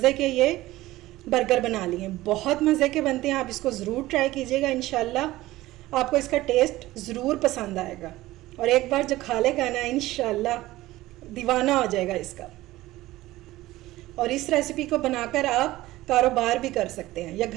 के ये बर्गर बना लिए। बहुत मज़े के बनते हैं, आप इसको ज़रूर ट्राई कीजिएगा। इंशाल्लाह आपको इसका टेस्ट ज़रूर पसंद आएगा और एक बार जो खा लेगा ना इंशाल्लाह दीवाना हो जाएगा इसका। और इस रेसिपी को बनाकर आप कारोबार भी कर सकते हैं या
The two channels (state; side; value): quieter; left; 17.2 dB